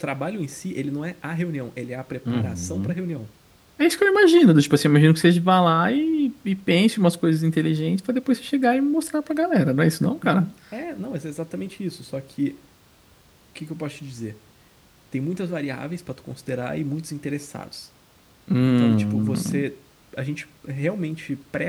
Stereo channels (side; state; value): both; identical; correlation 1.00